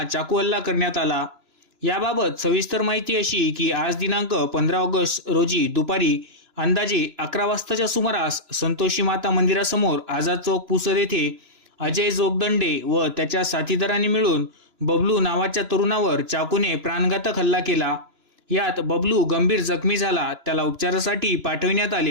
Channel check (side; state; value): left; late; 2.9 ms